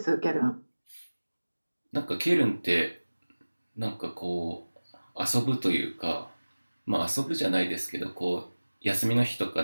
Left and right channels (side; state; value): both; inverted; correlation -1.00